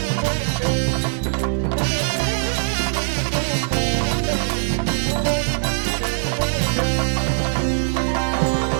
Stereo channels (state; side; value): silent; left; 63 dB below the other